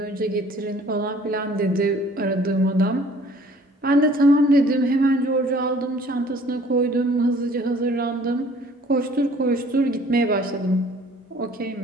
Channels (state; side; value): normal; both; correlation 0.55